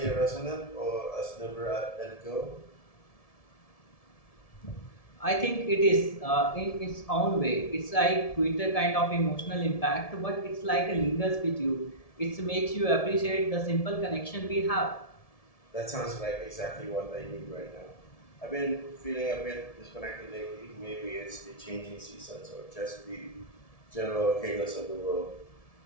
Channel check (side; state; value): right; late; 1.7 ms